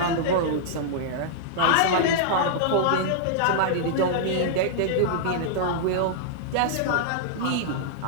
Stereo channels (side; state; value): both; different; correlation -0.02